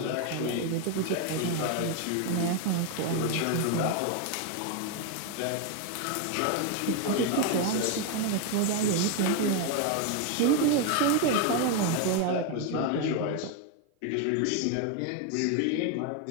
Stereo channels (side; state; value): both; different; correlation 0.01